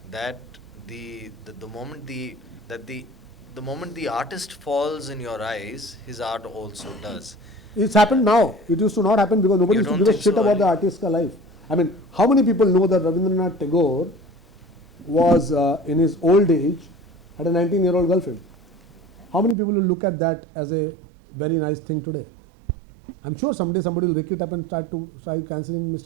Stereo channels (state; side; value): drops out; left; at 19.6 s